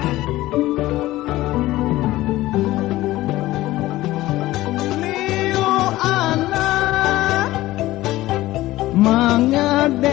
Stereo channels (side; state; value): right; quieter; 16.9 dB